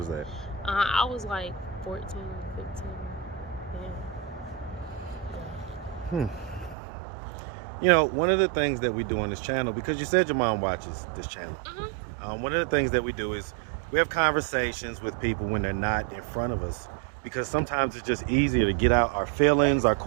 that? I was like 14, 15. Yeah. You know, one of the things that we do on this channel, because you said your mom watches this channel, one of the things that we do is we have conversations with people when they're not in front of us, because sometimes it's just easier to get out our feelings, our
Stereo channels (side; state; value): left; drops out; at 6.8 s